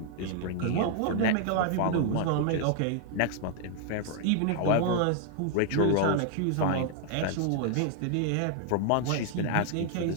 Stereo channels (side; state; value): both; different; correlation 0.00